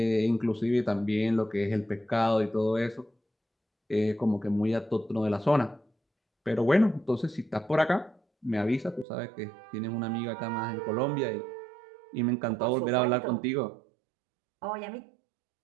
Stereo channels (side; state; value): left; drops out; at 9.1 s